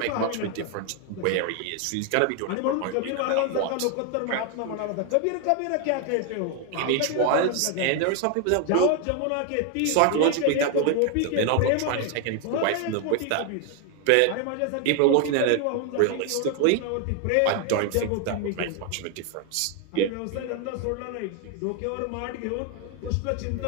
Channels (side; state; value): both; different; correlation 0.01